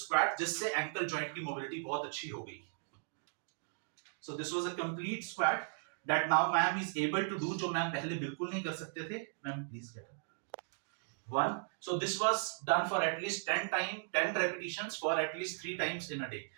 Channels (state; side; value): silent; left; digital silence